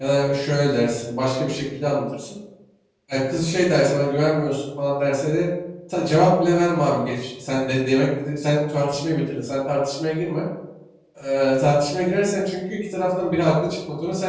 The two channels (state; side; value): identical; both; correlation 1.00